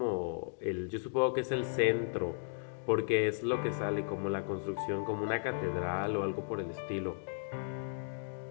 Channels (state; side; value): silent; right; digital silence